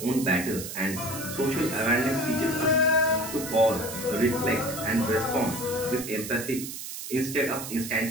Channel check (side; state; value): right; noise; hiss, 8 dB below the sound